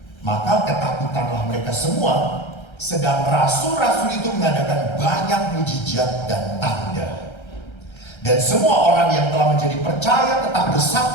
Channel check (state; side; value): late; right; 1.3 ms